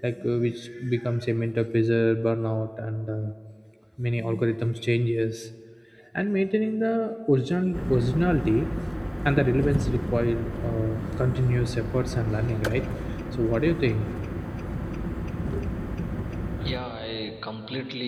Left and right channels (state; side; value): identical; both; correlation 1.00